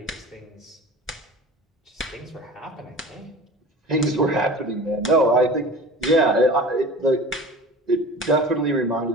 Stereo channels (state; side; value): normal; both; correlation 0.37